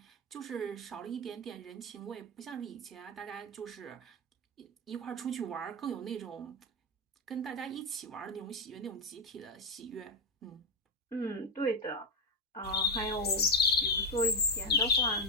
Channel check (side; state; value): both; normal; correlation 0.07